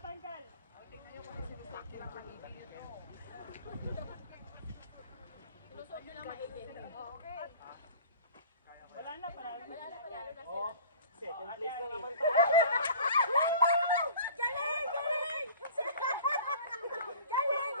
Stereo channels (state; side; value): inverted; both; correlation -0.45